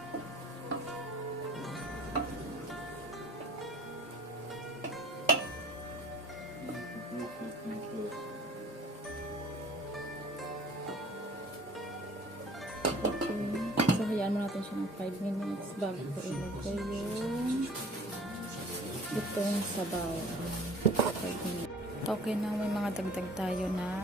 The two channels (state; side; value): normal; both; correlation 0.48